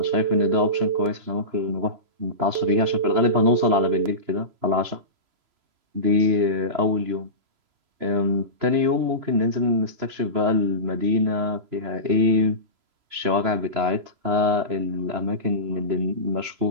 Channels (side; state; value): left; late; 2.9 ms